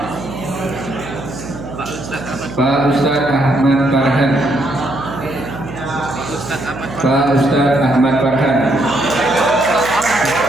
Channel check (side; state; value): right; noise; hum, 12 dB below the sound